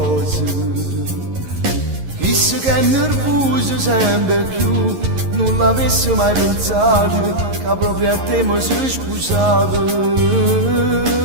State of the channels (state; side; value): late; left; 11 ms